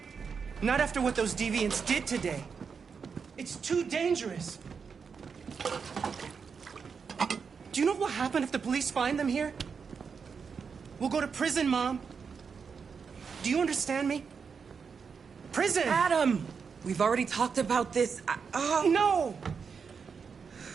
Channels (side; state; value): left; quieter; 5.9 dB